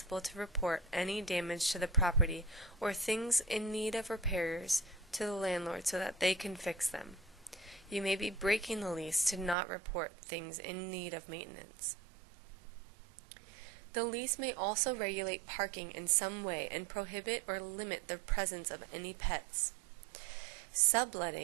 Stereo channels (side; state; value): left; drops out; at 9.6 s